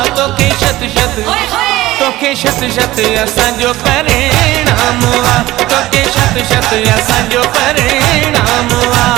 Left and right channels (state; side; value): quieter; left; 17.0 dB